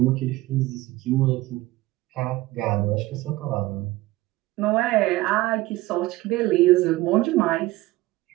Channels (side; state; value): left; quieter; 18.6 dB